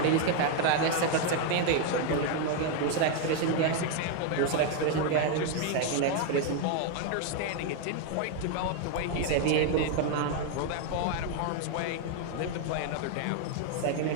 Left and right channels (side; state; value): both; different; correlation 0.00